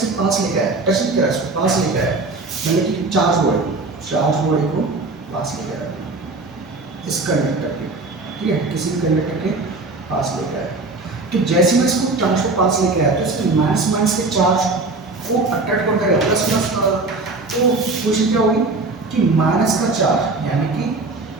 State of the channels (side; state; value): left; quieter; 3.4 dB